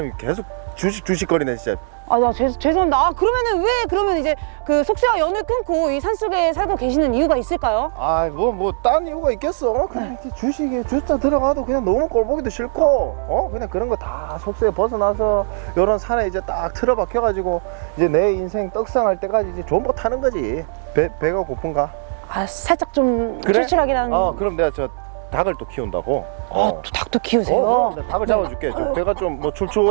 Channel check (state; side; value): silent; left; digital silence